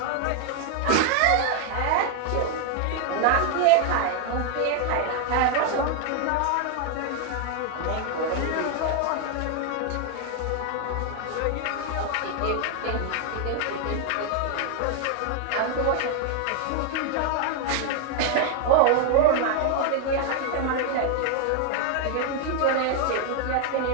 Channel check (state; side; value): different; both; correlation 0.00